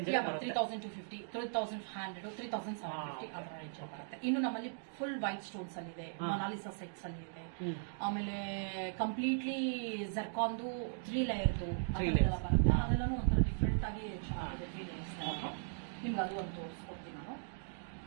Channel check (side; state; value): left; silent; digital silence